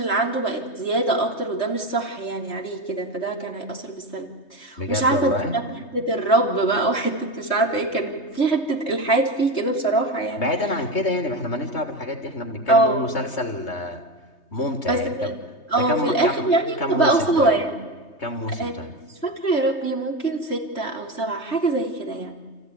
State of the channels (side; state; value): right; late; 3.3 ms